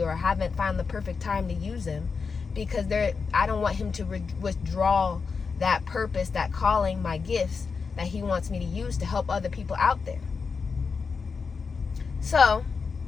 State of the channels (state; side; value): quieter; right; 5.2 dB